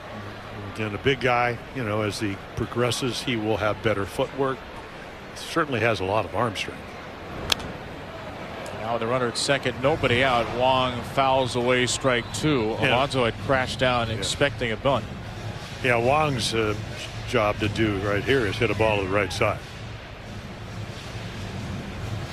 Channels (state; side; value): identical; both; correlation 1.00